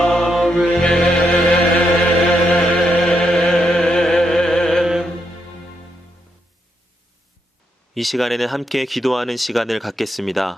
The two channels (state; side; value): normal; both; correlation 0.80